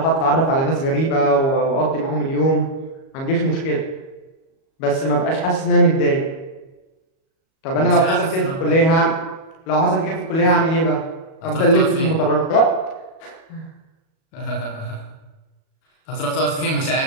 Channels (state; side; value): late; right; 37 ms